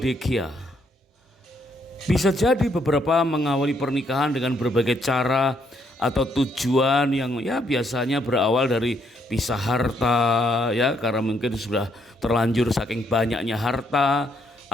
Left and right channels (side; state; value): both; normal; correlation 0.72